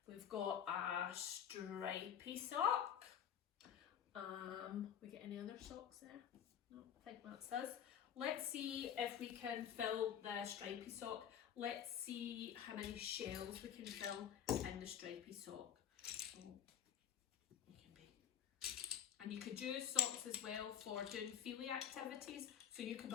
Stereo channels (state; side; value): quieter; right; 9.1 dB